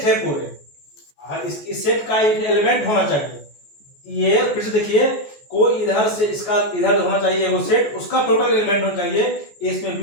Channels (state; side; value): late; right; 14 ms